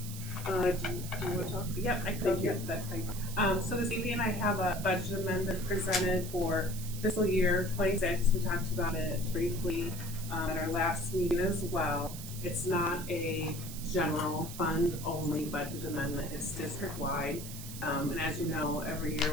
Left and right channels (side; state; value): right; noise; hiss, 11 dB below the sound